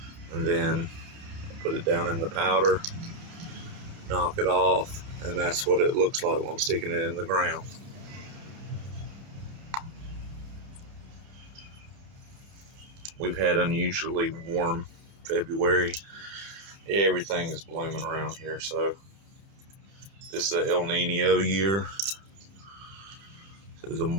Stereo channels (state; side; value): late; left; 31 ms